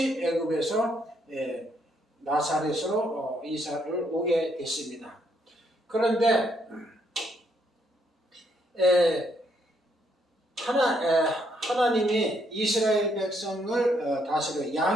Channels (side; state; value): both; normal; correlation 0.73